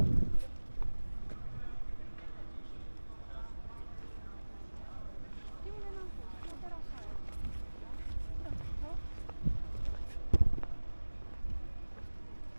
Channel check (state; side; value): inverted; both; correlation -1.00